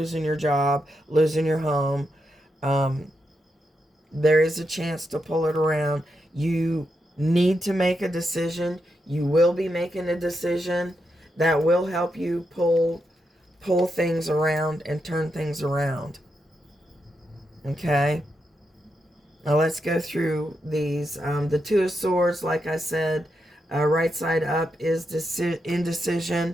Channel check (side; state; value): both; normal; correlation 0.84